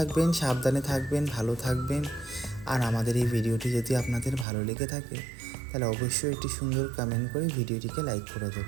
সাবধানে থাকবেন, ভালো থাকবেন। আর আমাদের এই ভিডিওটি যদি আপনাদের ভালো লেগে থাকে তাহলে অবশ্যই একটি সুন্দর কমেন্ট করে ভিডিওটিকে লাইক করে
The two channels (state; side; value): drops out; left; at 4.5 s